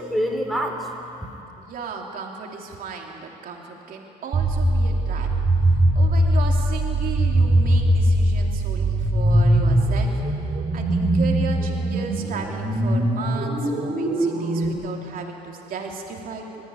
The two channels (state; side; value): normal; both; correlation 0.80